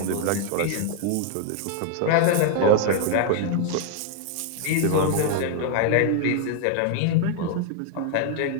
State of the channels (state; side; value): different; both; correlation 0.00